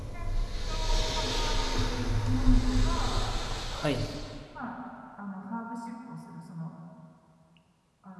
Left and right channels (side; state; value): both; identical; correlation 1.00